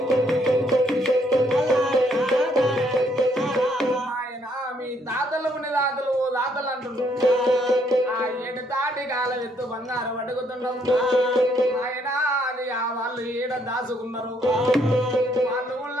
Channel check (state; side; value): normal; both; correlation 0.69